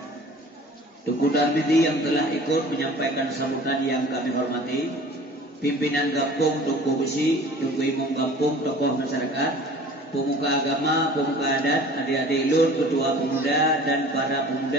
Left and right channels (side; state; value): both; normal; correlation 0.45